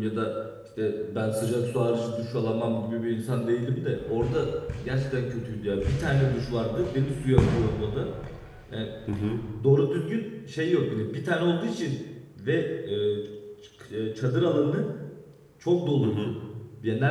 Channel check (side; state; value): both; identical; correlation 1.00